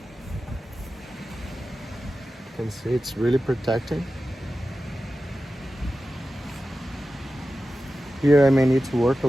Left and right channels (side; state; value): both; normal; correlation 0.93